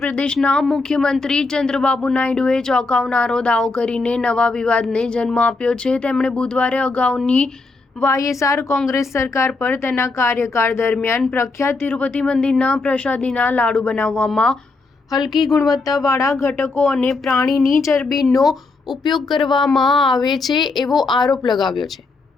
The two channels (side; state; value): right; quieter; 3.7 dB